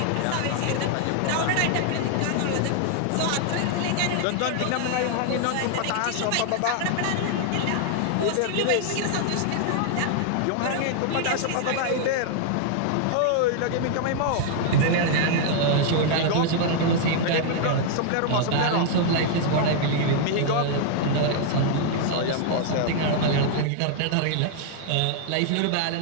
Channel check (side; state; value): both; different; correlation 0.00